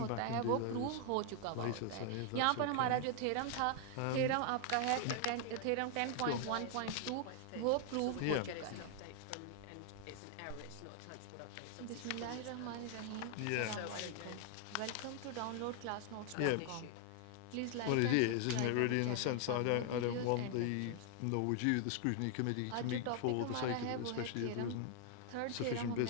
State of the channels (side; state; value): both; different; correlation 0.00